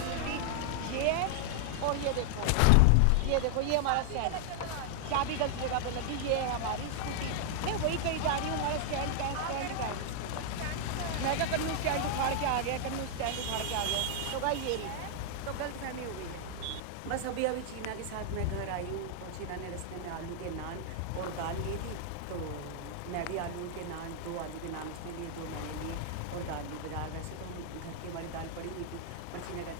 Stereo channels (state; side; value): different; both; correlation 0.00